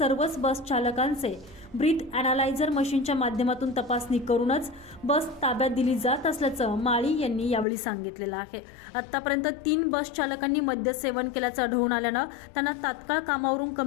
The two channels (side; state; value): right; drops out; at 7.7 s